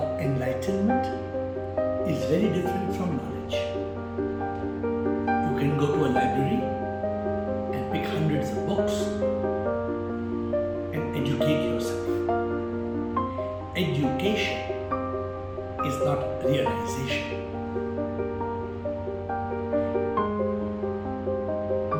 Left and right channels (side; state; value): both; identical; correlation 1.00